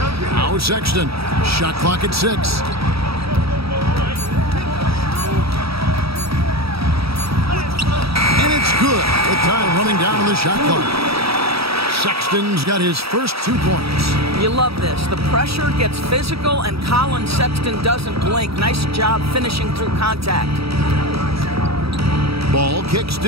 Now Sexton. Shot clock at 6. And it's good with time running down on the shot clock. Sexton's got his first 2 points. You love this. The pressure gets physical, and Colin Sexton doesn't blink. Nice job finishing through contact. Ball kicks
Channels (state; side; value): late; left; 0.77 ms